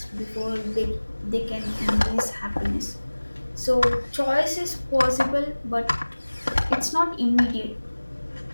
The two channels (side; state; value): both; inverted; correlation -1.00